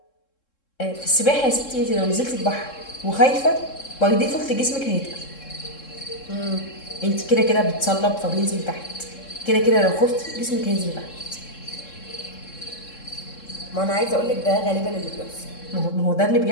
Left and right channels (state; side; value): late; right; 3.7 ms